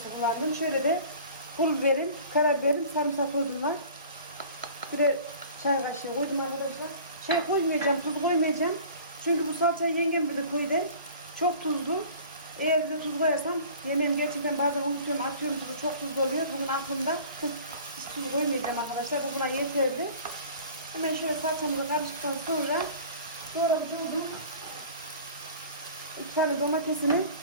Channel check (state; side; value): inverted; both; correlation -0.44